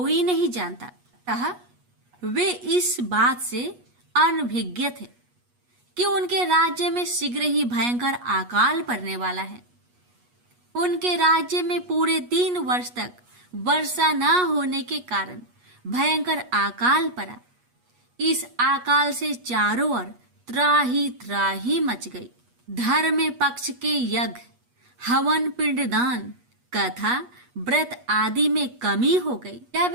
नहीं जानता। अतः वे इस बात से अनभिज्ञ थे कि उनके राज्य में शीघ्र ही भयंकर अकाल पड़ने वाला है। उनके राज्य में पूरे 3 वर्ष तक वर्षा न होने के कारण भयंकर अकाल पड़ा। इस अकाल से चारों ओर त्राही मच गई। धर्म पक्ष के यज्ञ, हवन, पिंडदान, कथा, व्रत आदि में कमी हो गई। जब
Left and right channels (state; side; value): late; left; 8.3 ms